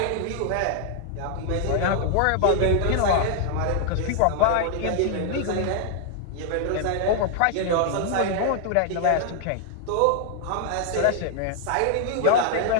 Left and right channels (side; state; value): both; different; correlation 0.00